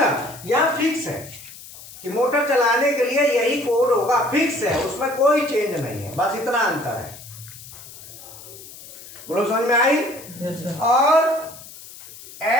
ना? यहाँ फिक्स है कि मोटर चलाने के लिए यही कोड होगा, फिक्स है, उसमें कोई चेंज नहीं है, बस इतना अंतर है। बोलो, समझ में आई? yes, और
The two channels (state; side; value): noise; left; hiss, 17 dB below the sound